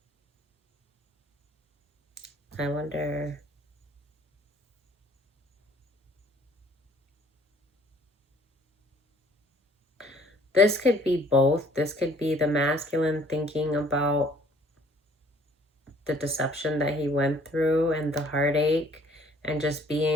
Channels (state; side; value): normal; both; correlation 0.57